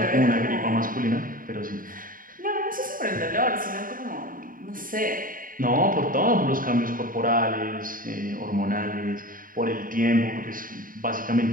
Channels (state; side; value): late; left; 0.40 ms